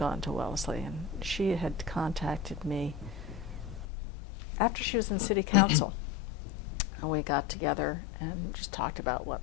to Wellesley, and she had contacted me after she was in city council. And we got together and just talked about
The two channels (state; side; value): drops out; right; at 3.9 s